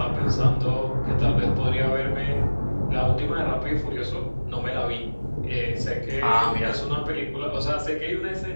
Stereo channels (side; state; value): both; inverted; correlation -1.00